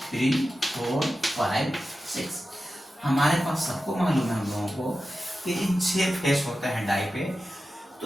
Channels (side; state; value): both; normal; correlation 0.93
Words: 3 4 5 6। हमारे पास सबको मालूम है हम लोगों को कि इन 6 फेस होते हैं डाई पे,